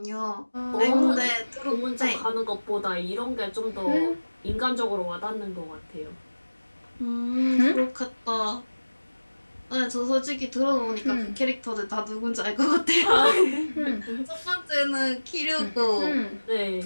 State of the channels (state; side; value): inverted; both; correlation -1.00